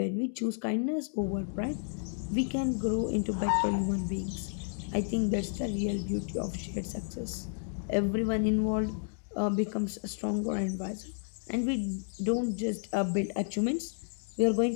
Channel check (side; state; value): right; silent; digital silence